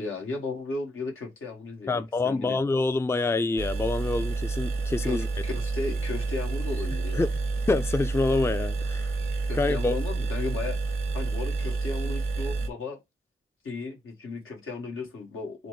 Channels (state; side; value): normal; both; correlation 0.81